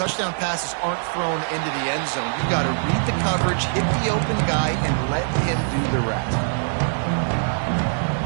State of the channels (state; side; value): silent; left; digital silence